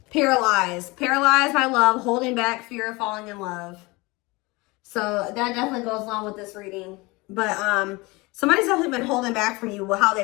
Paralyzed. Paralyzed by love, holding back, fear of falling in love. So that definitely goes along with this reading. But somebody's definitely been holding back from you how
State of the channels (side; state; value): right; quieter; 24.2 dB